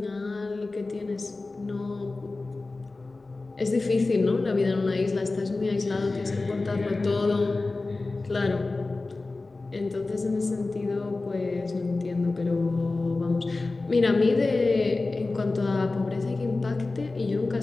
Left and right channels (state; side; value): quieter; right; 3.4 dB